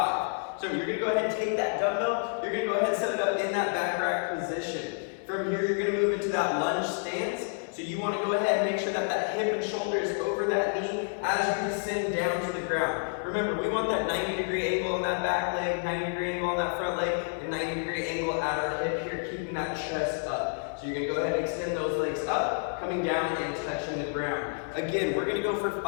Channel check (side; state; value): right; silent; 58 dB below the other